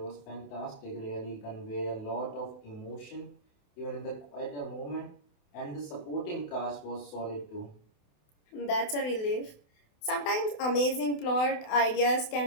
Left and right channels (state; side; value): late; right; 28 ms